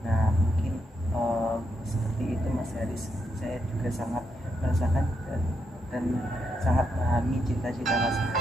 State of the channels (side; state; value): both; normal; correlation 0.81